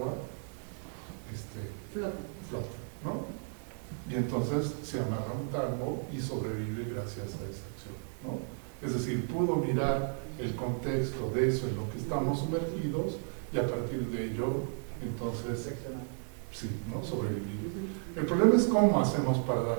flotan, ¿no? Y entonces se amarra un tambo y sobrevive gracias a esa acción, ¿no? Es decir, pudo mirar el contexto de eso en lo que estamos sumergidos y a partir de ello, entonces, sí, ¿no?, sobrevivir. El problema es cómo hacemos para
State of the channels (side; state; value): left; silent; 55 dB below the other